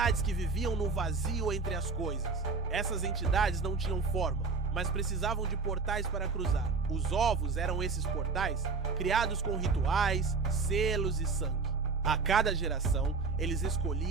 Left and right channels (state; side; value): quieter; left; 4.4 dB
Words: que viviam no vazio entre as coisas. Essas entidades não tinham forma, mas precisavam de portais para cruzar. Os ovos eram esses portais, criados com rituais, selos e sangue. A cada geração, eles